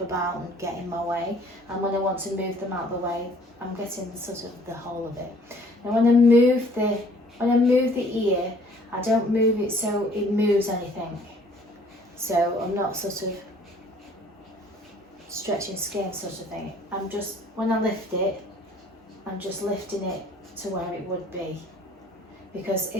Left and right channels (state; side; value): normal; both; correlation 0.57